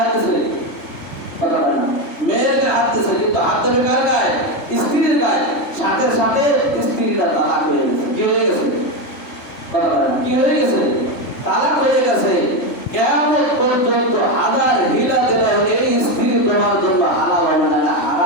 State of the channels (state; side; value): late; right; 3.4 ms